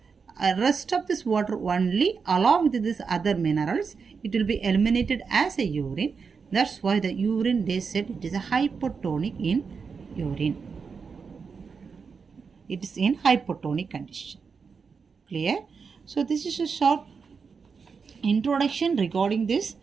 rest of this water only along with this other minerals, it will be eliminated as a urine. That's why the urine, they said it is a hypotonic in urine. It is in hypotonic condition. Clear? So this is a short introduction regarding this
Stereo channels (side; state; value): left; quieter; 5.5 dB